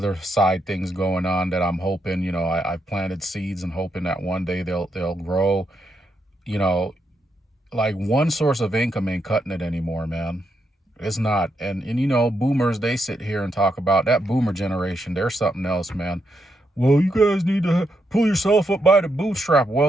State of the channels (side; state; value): both; normal; correlation 0.81